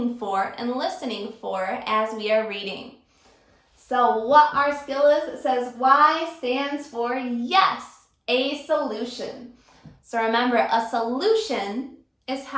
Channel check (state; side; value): identical; both; correlation 1.00